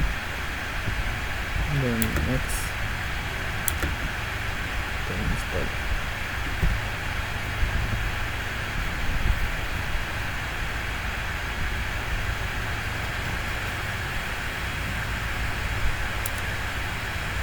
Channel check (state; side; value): identical; both; correlation 1.00